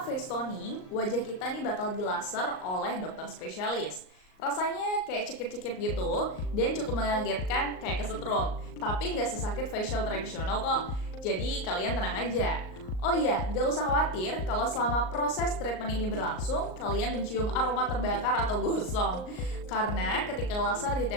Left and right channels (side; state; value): right; late; 38 ms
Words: face toning, wajah kita nih bakal dilaser oleh dokter spesialis. Rasanya kayak cekit-cekit gitu, dan cukup mengagetkan kayak kesetrum. Tapi nggak sesakit facial tradisional kok, jadi kalian tenang aja. Oh iya, gak usah khawatir kalau selama proses treatment ini berlangsung, kalian mencium aroma terbakar atau gosong. Karena ketika laser